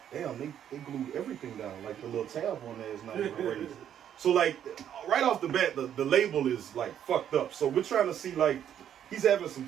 damn, they glued everything down. Like the little tab on there is not even raised. So like right off the bat, the label is like fucked up. So we're trying to see like, he's having some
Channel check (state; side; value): quieter; left; 9.8 dB